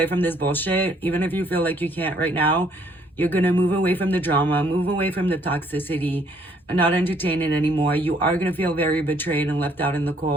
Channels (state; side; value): normal; both; correlation 0.65